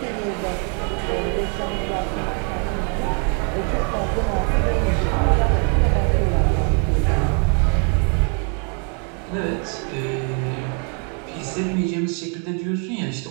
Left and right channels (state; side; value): quieter; left; 39.5 dB